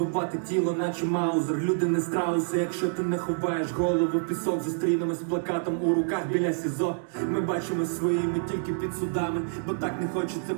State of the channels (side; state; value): left; silent; digital silence